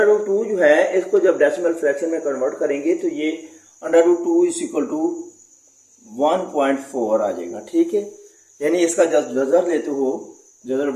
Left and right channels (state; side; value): identical; both; correlation 1.00